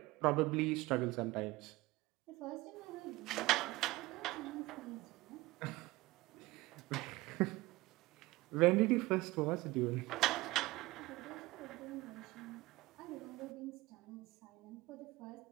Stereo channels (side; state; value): left; quieter; 19.9 dB